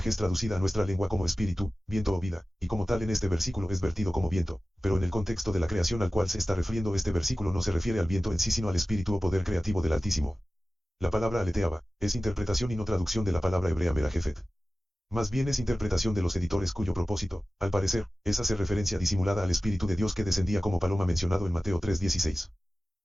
es traducida a nuestra lengua como espíritu, viento o vida, y como tal en este versículo es vertido como viento, pero en el contexto de la creación al cual se está refiriendo este versículo no se refiere al viento en sí sino al espíritu o poder creativo del Altísimo. La palabra aleteaba es interpretación y no traducción de la palabra hebrea merajefet. Más bien es interpretación de los editores cuyo propósito, al parecer, es hacer referencia disimulada al Espíritu de Dios que descendía como paloma mencionado en Mateo 3:16.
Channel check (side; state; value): both; normal; correlation 0.96